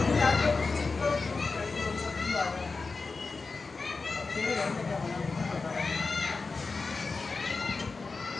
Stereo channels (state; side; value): quieter; right; 4.2 dB